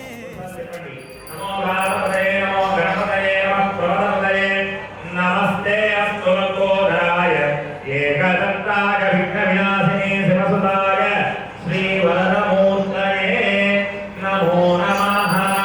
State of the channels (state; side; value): identical; both; correlation 1.00